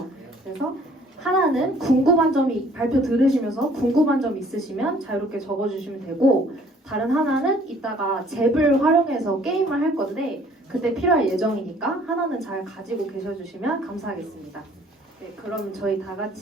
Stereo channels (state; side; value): normal; both; correlation 0.57